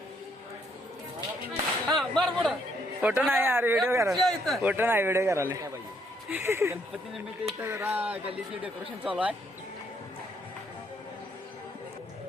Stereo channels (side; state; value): both; normal; correlation 0.70